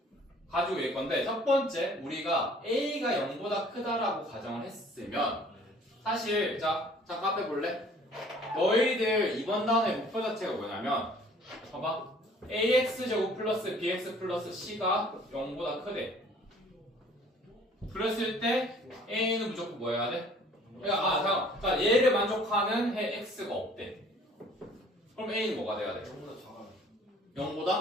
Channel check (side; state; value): both; normal; correlation 0.54